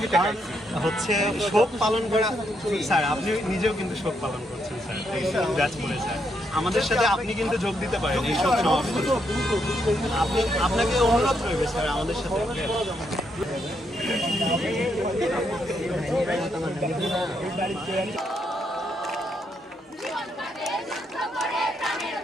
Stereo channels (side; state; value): both; normal; correlation 0.77